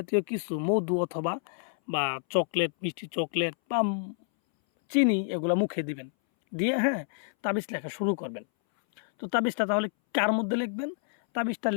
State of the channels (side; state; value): right; silent; 59 dB below the other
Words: কিছু মধু অথবা বা চকলেট, মিষ্টি চকলেট বা চিনি এগুলো মুখে দিবেন, দিয়ে তাবিজ লেখা শুরু করবেন। তো তাবিজটা তাহলে কার মধ্যে লিখবেন? তাবিজটা